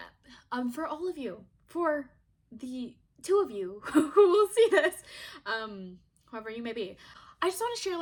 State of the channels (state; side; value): identical; both; correlation 1.00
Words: For all of you, for the two of you who will see this, whoever you may be. I just want to share